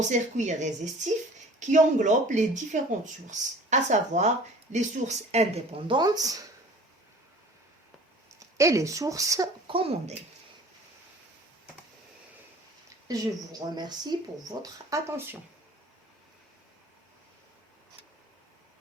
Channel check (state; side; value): normal; both; correlation 0.46